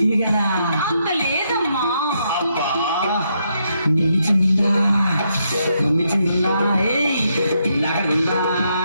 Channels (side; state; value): both; inverted; correlation -0.78